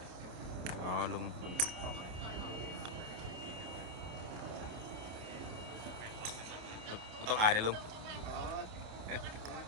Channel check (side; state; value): left; late; 28 ms